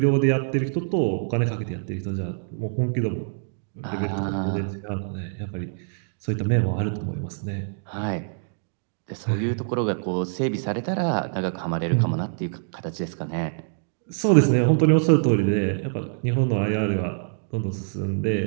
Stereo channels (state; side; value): silent; left; digital silence